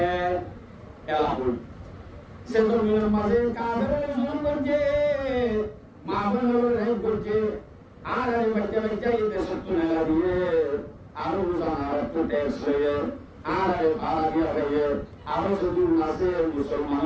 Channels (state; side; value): identical; both; correlation 1.00